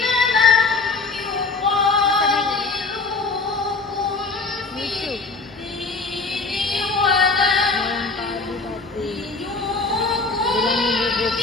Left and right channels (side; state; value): right; quieter; 4.0 dB